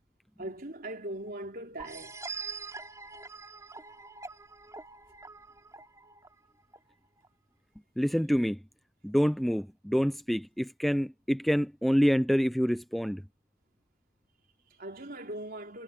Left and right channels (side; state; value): both; normal; correlation 0.96